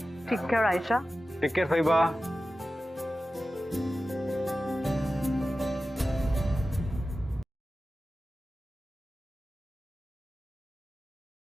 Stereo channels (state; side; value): normal; both; correlation 0.94